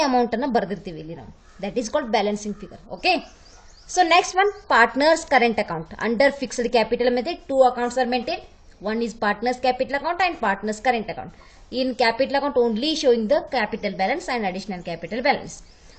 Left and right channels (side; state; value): both; identical; correlation 1.00